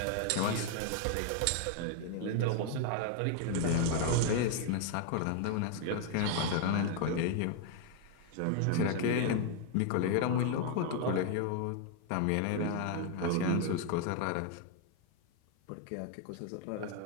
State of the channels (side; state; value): both; different; correlation 0.00